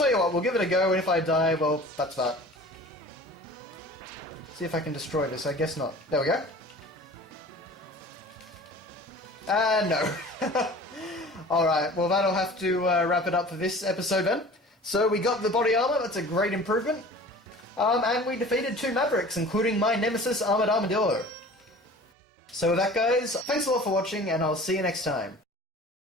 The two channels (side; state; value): both; normal; correlation 0.42